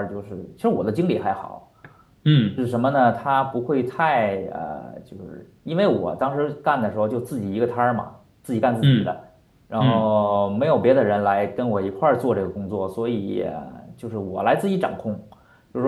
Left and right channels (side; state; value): both; identical; correlation 1.00